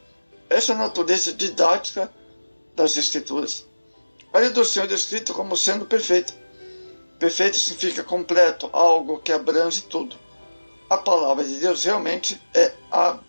Essa é a natureza didática das Escrituras. A lei do Senhor é descrita como sendo perfeita. Perfeito significa completo, algo que abrange tudo. A palavra de Deus realmente é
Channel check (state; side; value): inverted; both; correlation -1.00